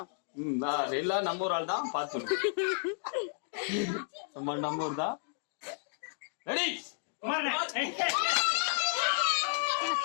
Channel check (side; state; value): right; silent; digital silence